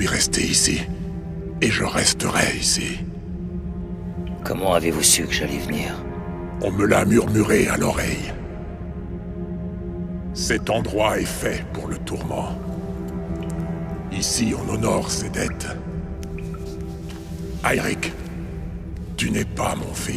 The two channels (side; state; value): both; identical; correlation 1.00